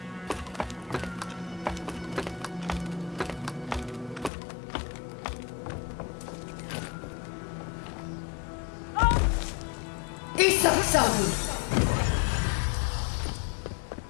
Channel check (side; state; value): right; drops out; at 4.3 s